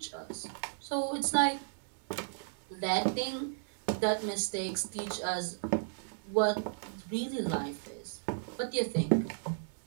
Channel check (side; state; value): left; silent; digital silence